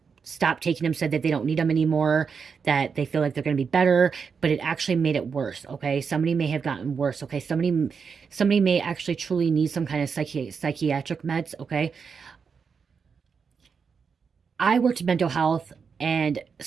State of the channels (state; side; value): quieter; left; 5.9 dB